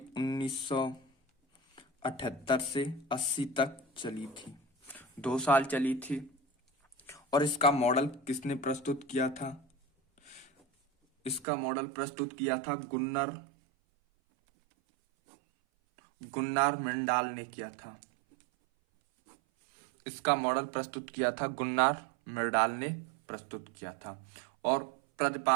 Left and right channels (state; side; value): drops out; left; at 11.5 s